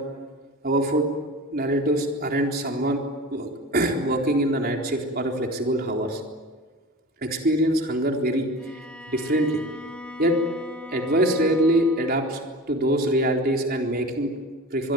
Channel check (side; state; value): both; normal; correlation 0.35